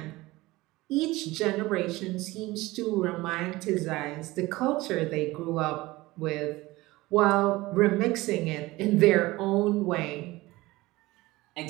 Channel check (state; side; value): quieter; left; 19.8 dB